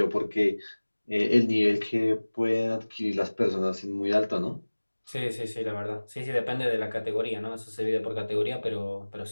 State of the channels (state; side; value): inverted; both; correlation -1.00